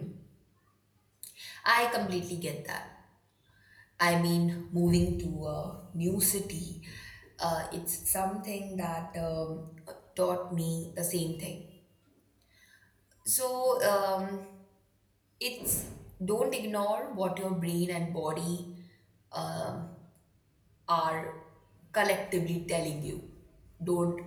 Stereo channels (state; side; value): identical; both; correlation 1.00